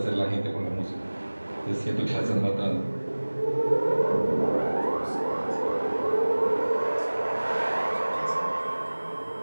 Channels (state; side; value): inverted; both; correlation -1.00